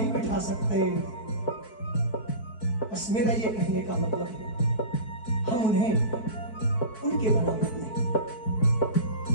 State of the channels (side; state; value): right; late; 4.6 ms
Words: बिठा सकते। बस मेरा ये कहने का मतलब है हम उन्हें उनके बराबर नहीं।